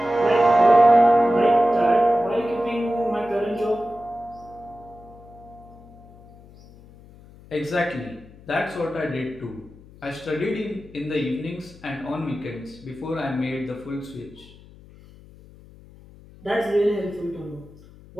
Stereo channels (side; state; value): left; noise; hum, 22 dB below the sound